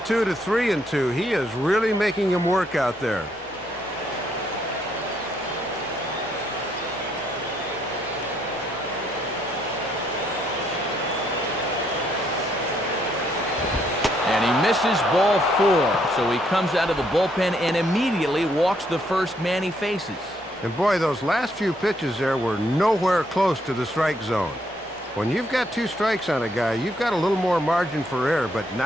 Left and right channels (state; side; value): normal; both; correlation 0.72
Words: to 3-2, he is really making him work out there. this is ball 4, so he comes out of the bullpen and immediately walks the first man he faces. And boy, those last few pitches there were nowhere close to the strike zone. When you've got 2 strikes on a guy, you've got a little more margin for error, but